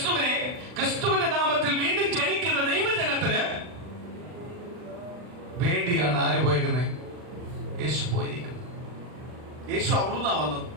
ക്രിസ്തുവിന്റെ നാമത്തിൽ വീണ്ടും ജനിക്കുന്ന ദൈവജനത്തിന് വേണ്ടിയാണ് ആര് പോയേക്കുന്നത്? യേശു പോയിരിക്കുന്നത്. യേശു അവിടുന്നാ വന്നത്.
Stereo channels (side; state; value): left; late; 40 ms